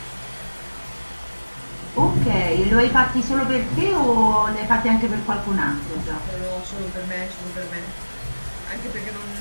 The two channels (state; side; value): inverted; both; correlation -1.00